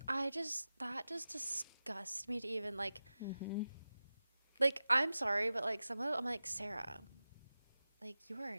That just disgusts me to even, like, like, I'm sorry, but, like, some of it, I'm like, Sarah, like, you are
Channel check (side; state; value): both; inverted; correlation -0.95